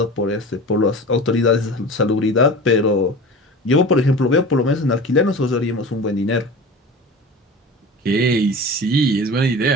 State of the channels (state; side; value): normal; both; correlation 0.34